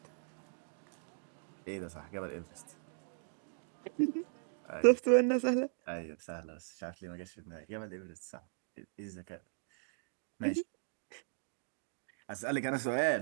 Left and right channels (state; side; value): silent; left; digital silence